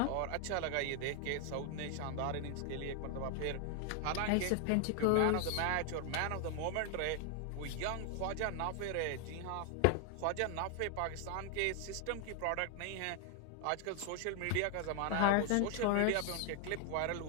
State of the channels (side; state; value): both; different; correlation 0.00